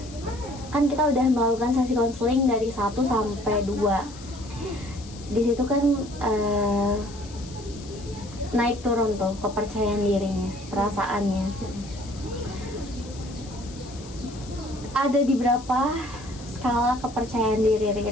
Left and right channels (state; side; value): noise; left; hiss, 19 dB below the sound